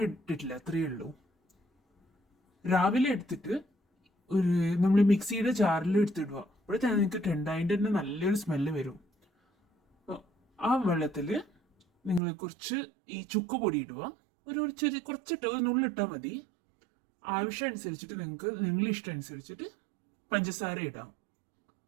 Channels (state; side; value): drops out; left; at 12.2 s